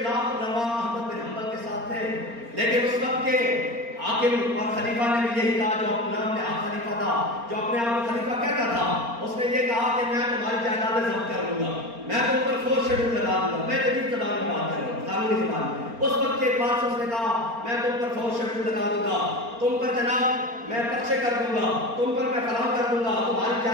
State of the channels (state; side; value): late; left; 4.3 ms